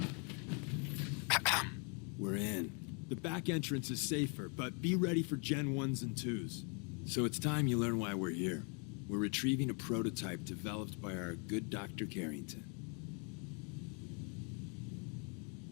We're in. The back entrance is safer, but be ready for Gen 1s and 2s. So it's time you learn why we're here. We're retrieving a prototype developed by our good Dr. Carrington.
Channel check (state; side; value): quieter; right; 37.4 dB